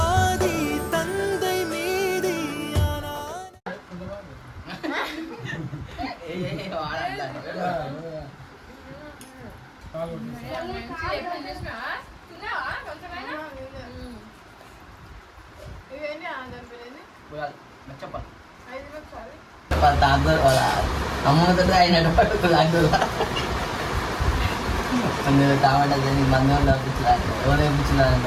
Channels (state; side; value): identical; both; correlation 1.00